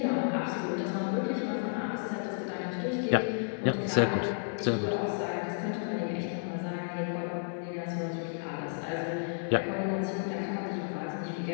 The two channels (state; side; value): silent; right; 56 dB below the other